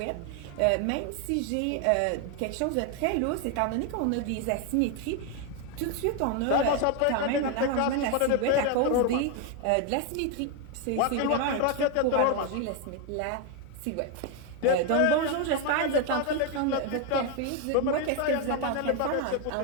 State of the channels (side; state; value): both; different; correlation 0.01